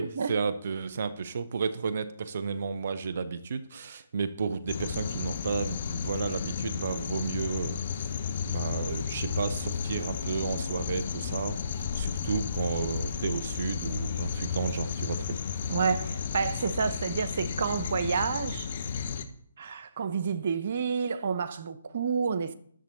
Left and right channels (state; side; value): inverted; both; correlation -0.73